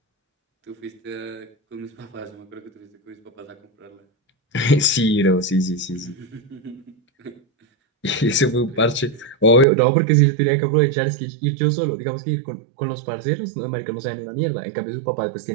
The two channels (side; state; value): left; drops out; at 9.7 s